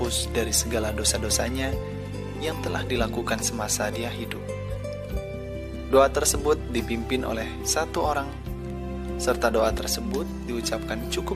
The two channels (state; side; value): identical; both; correlation 1.00